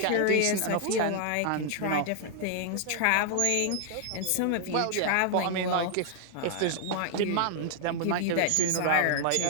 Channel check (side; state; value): both; different; correlation 0.00